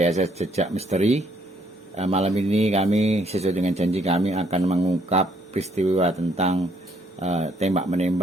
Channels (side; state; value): both; normal; correlation 0.68